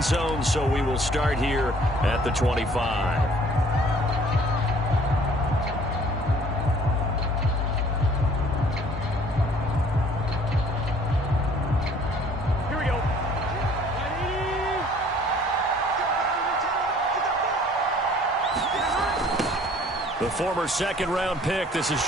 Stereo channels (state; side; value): normal; both; correlation 0.55